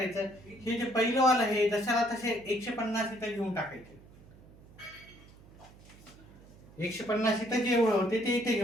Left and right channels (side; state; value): right; noise; hum, 23 dB below the sound